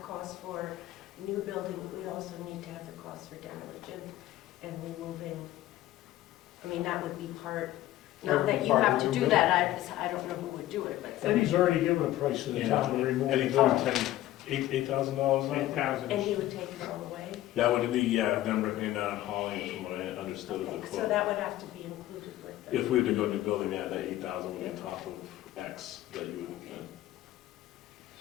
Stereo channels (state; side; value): quieter; right; 14.7 dB